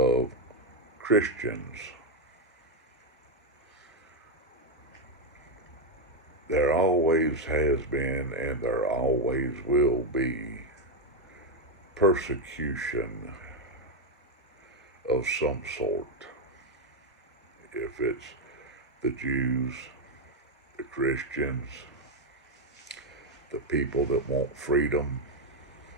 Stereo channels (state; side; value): normal; both; correlation 0.03